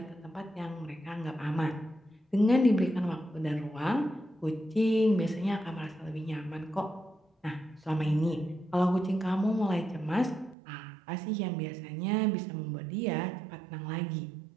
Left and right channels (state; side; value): drops out; left; at 10.6 s